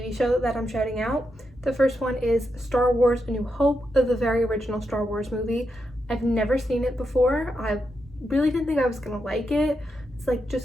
show that I'm shouting out. The first one is Star Wars A New Hope, the very original Star Wars movie. I've never seen it before. I really didn't think I was gonna like it. It's like,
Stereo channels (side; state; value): both; normal; correlation 0.84